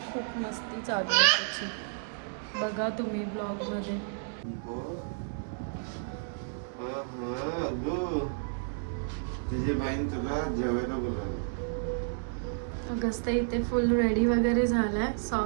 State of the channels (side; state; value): left; silent; digital silence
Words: खूप मस्ती चालू आहे त्याची. बघा तुम्ही ब्लॉगमध्ये. तुझी बहीण तुला जेवायला बोलावलं. अगस्ता इथे फुल रेडी वगैरे झालाय,